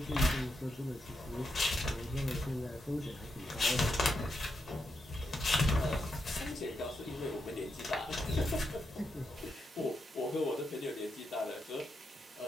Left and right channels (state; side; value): normal; both; correlation 0.84